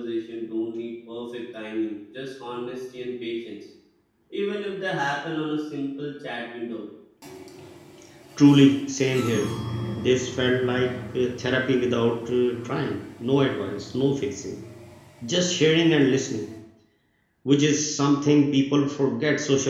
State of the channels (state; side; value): identical; both; correlation 1.00